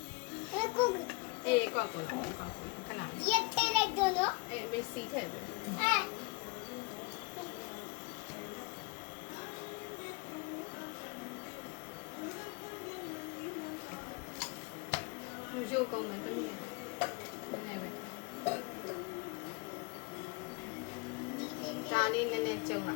အေးကွက်ကိုခဏရက်ထဲလိုက်တော့နော်အေးမေးစီထည့်ပြီရုပ်ကုန်မယ်တမီးရမနေပဲဒါလေးနည်းနည်းကျုံလာ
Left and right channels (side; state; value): right; quieter; 28.8 dB